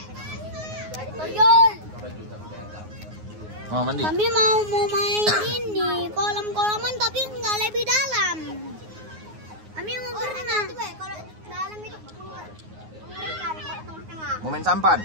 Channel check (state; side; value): late; left; 9.5 ms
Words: Toyol. Mau mandi? Kami mau main ini kolam-kolaman tapi nggak lebih dalam. Kami mau berenang. Kalau dalam itu mengerikan kalau tengah-tengah. Mau main sampan?